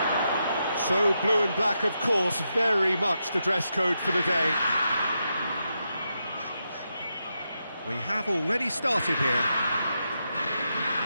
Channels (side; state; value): both; inverted; correlation -0.85